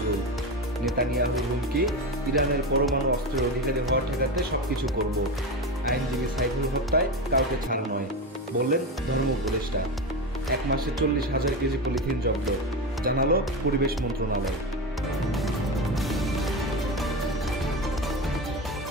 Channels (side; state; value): both; normal; correlation 0.20